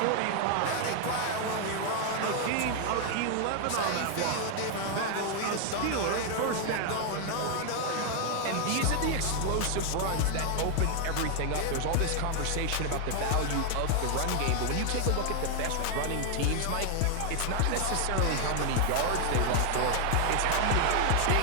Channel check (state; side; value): different; both; correlation 0.00